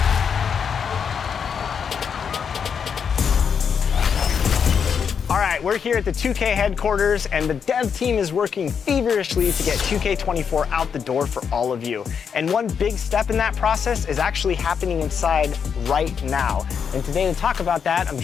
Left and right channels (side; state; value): right; quieter; 6.9 dB